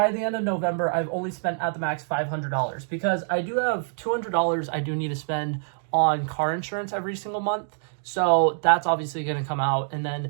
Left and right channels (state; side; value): silent; left; digital silence